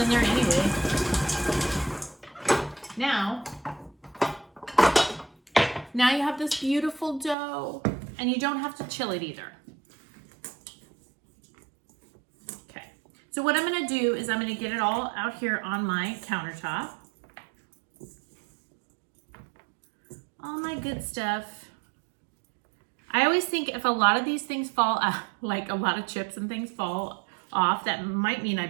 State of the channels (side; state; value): left; drops out; at 7.4 s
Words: there anyway. Now you have this beautiful dough, and you don't have to chill it either. Okay, so what I'm gonna do is I'm gonna get it all out here on my countertop. All my good stuff. I always think if a lot of these things fall out, like a lot of chips and things fall off, that might mean I